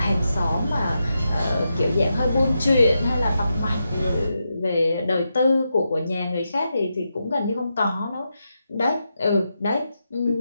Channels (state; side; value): inverted; both; correlation -0.86